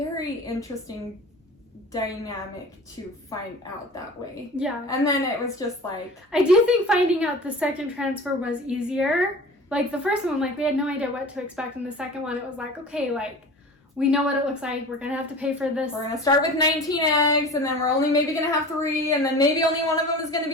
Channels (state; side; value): normal; both; correlation 0.38